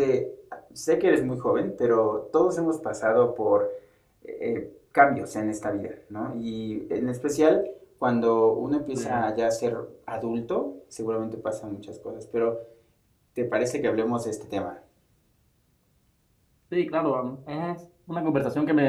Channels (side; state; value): both; identical; correlation 1.00